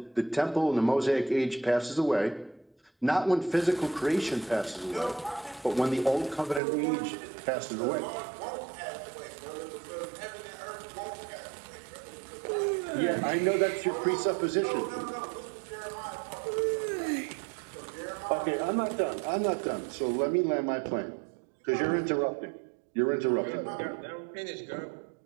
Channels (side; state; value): left; drops out; at 6.6 s